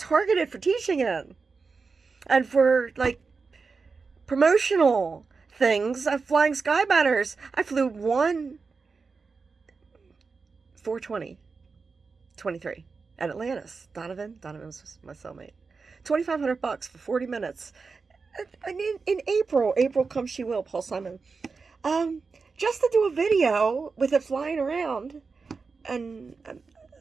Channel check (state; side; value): quieter; left; 4.7 dB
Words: for teaching it. And for, like, promotional things. I'm flying sky banners. I flew 420-23 at Atlantis. Donovan was my cellmate. $2,500 for 40 minutes. And in April come she will, Paul Simon. Just to do a video with it flying around, and